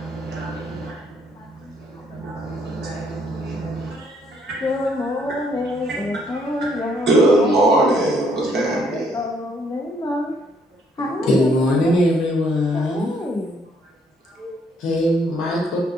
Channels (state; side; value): normal; both; correlation 0.68